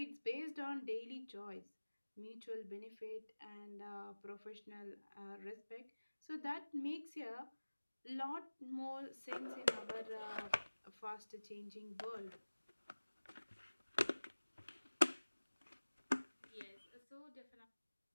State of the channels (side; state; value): both; inverted; correlation -1.00